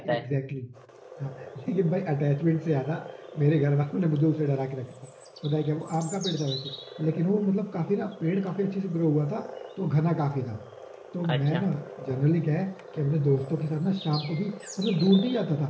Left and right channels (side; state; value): both; identical; correlation 1.00